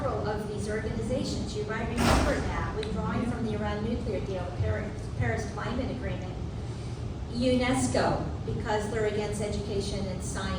of these organizations. You might remember that, withdrawing from the Iran nuclear deal, the Paris Climate Agreement. UNESCO, because they're against education and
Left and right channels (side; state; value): both; identical; correlation 1.00